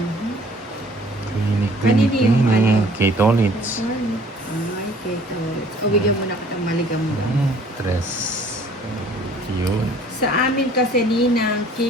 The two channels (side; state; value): both; normal; correlation 0.55